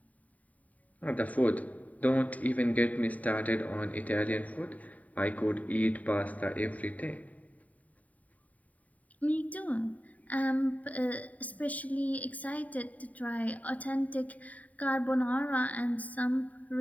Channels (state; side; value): late; right; 0.071 ms